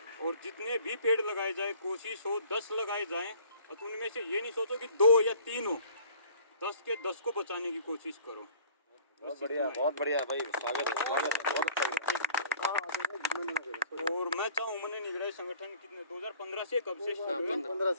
और जितने भी पेड़ लगाए जाए, कोशिश हो 10 लगाए जाएं, तो उनमें से ये नहीं सोचो कि 2 या 3 हो, 10 के 10 को बचाने की कोशिश करो। बहुत बढ़िया भाई, स्वागत है बहुत अच्छा। और मैं चाहूँ मैंने निगरानी संगठन कितने 2015 से कब से शुरू हुए? 15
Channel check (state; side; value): inverted; both; correlation -0.52